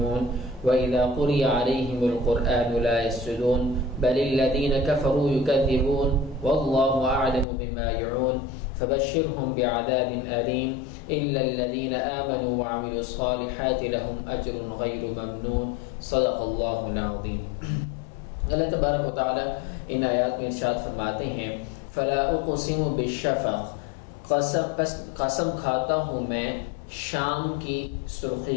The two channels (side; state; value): right; drops out; at 7.5 s